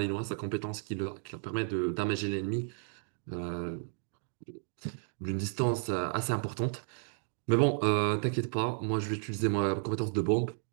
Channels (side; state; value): left; silent; digital silence